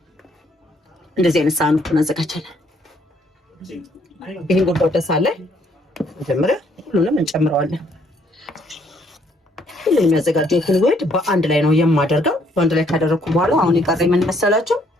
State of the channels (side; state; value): both; normal; correlation 0.67